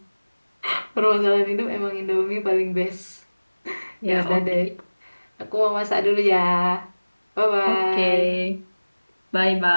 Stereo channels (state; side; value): inverted; both; correlation -1.00